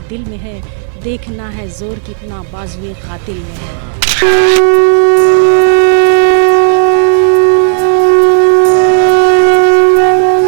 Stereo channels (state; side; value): silent; left; digital silence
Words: दिल में है, देखना है जोर कितना बाजुए कातिल में है।